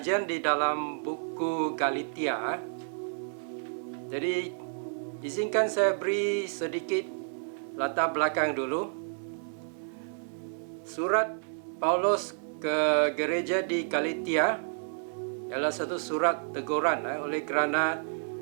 di dalam buku Galatia. Jadi izinkan saya beri sedikit latar belakang dulu. Surat Paulus ke gereja di Galatia ialah satu surat teguran oleh kerana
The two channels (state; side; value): silent; left; digital silence